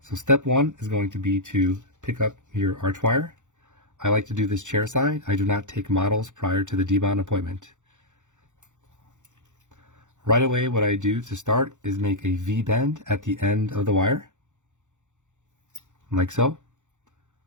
So step one is going to be to pick up your arch wire. I like to do this chairside. I do not take models prior to the debound appointment. Right away, what I do to start is make a V-bend at the end of the wire, like so.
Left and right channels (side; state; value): left; late; 0.85 ms